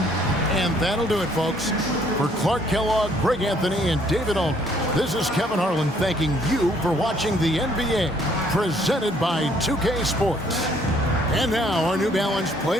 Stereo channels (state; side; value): normal; both; correlation 0.64